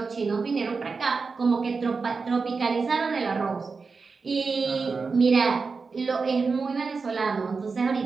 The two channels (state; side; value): quieter; left; 4.6 dB